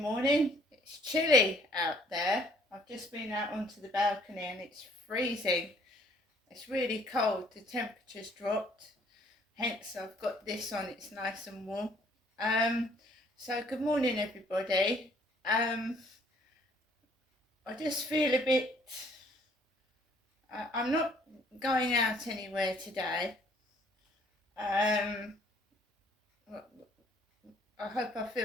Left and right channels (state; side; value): normal; both; correlation 0.61